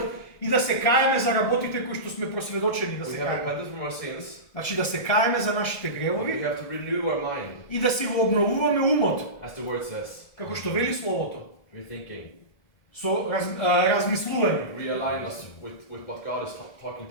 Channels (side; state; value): right; late; 1.6 ms